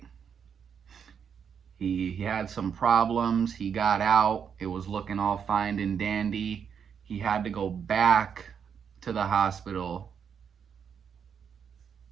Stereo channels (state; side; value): quieter; left; 7.3 dB